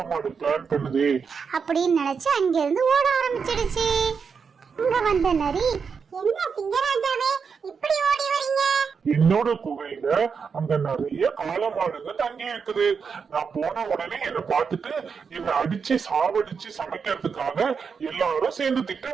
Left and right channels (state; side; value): quieter; left; 5.9 dB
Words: பிளான் பண்ணுதே அப்படின்னு நினைச்சு அங்க இருந்து ஓட ஆரம்பிச்சிடுச்சு. அங்க வந்த நரி, என்ன சிங்கராஜாவே இப்படி ஓடி வரீங்க? என்னோட குகையில அங்க நிறைய காளமாடுங்க தங்கி இருக்குது. நான் போன உடனே என்ன பார்த்துட்டு என்ன அடிச்சு சாவடிச்சு சமைக்கிறதுக்காக எல்லாரும் சேர்ந்து